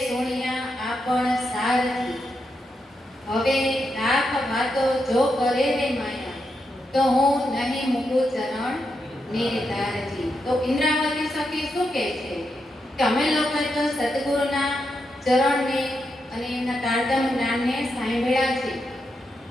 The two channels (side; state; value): both; normal; correlation 0.84